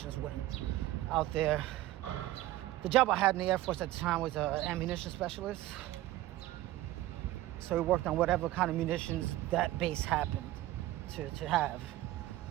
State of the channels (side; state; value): left; quieter; 15.5 dB